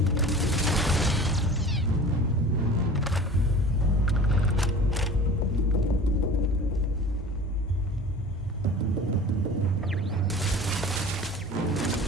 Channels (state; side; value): normal; both; correlation 0.41